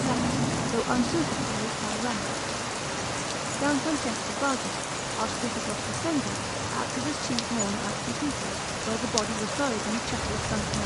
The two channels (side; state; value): both; identical; correlation 1.00